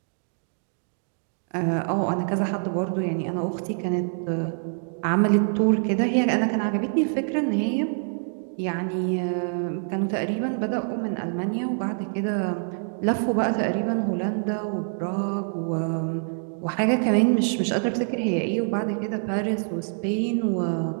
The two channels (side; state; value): left; silent; digital silence